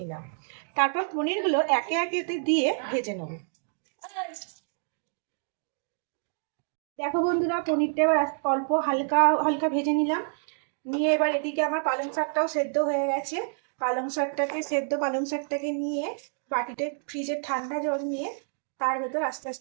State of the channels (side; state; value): left; silent; digital silence